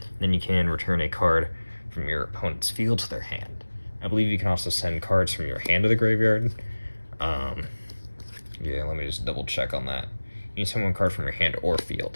Then you can return a card from your opponent's field to their hand. I believe you can also send cards from your hand to the graveyard. Yeah, let me just double check on that. You can send one card from your hand or field.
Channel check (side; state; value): both; inverted; correlation -1.00